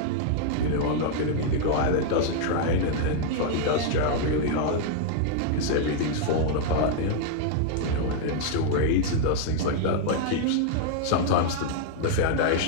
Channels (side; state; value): both; different; correlation 0.00